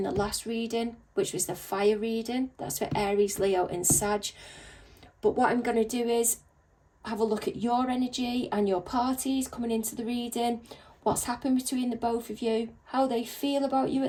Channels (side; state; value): both; identical; correlation 1.00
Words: the last reading, which was the fire reading. That's for Aries, Leo and Sag. But what I'm going to do is have a look at your energy and your parties coming into the reading, what's happened between the both of you, how they feel about you